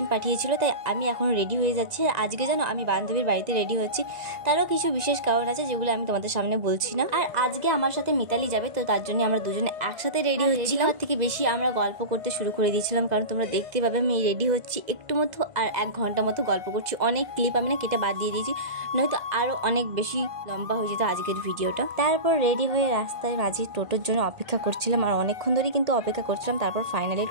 পাঠিয়েছিল, তাই আমি এখন রেডি হয়ে যাচ্ছি। আর আজকে জানো আমি বান্ধবীর বাড়িতে রেডি হচ্ছি, তারও কিছু বিশেষ কারণ আছে যেগুলো আমি তোমাদের সামনে বলছি না। আর আজকে আমার সাথে মিতালি যাবে, তো তার জন্য আমরা দুজনে একসাথে রেডি হচ্ছিলাম। তার থেকে বেশি আমরা গল্প করতে শুরু করে দিয়েছিলাম, কারণ তোমরা দেখতে পাবে আমি রেডি হচ্ছি একটু মতো আর 1 ঘন্টা মতো গল্প করছি। অনেক ক্লিপ আমি না কেটে বাদ দিয়ে দিয়েছি, নয়তো আরও অনেক বেশি লম্বা হয়ে যেত আজকের ভিডিওটা। তারপর রেডি হয়ে রাস্তায় মাঝি টোটোর জন্য অপেক্ষা করছিলাম, আর অনেকক্ষণ ধরেই কিন্তু অপেক্ষা করছিলাম। তারপর ফাইনালি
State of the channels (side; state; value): left; late; 2.0 ms